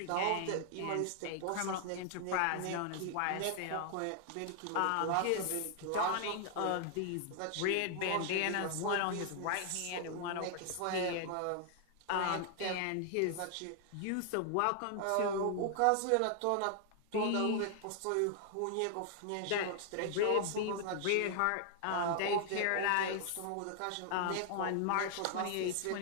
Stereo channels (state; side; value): different; both; correlation 0.00